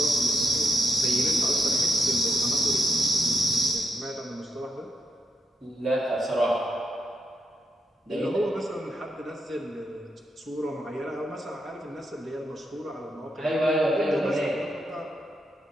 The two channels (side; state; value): both; normal; correlation 0.80